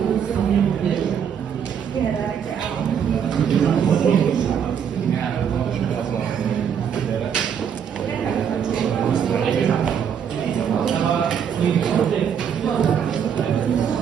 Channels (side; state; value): left; quieter; 7.9 dB